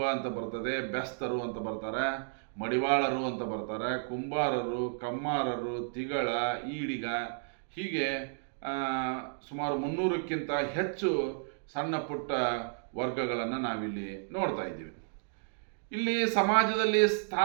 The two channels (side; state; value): left; silent; digital silence